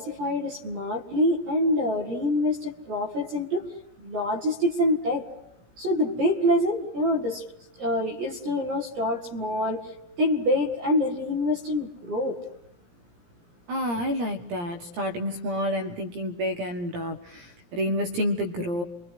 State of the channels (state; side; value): late; left; 17 ms